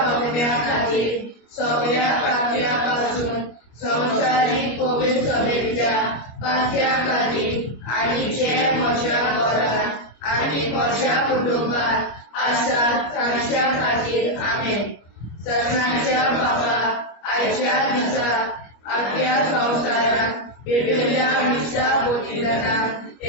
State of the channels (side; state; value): right; late; 25 ms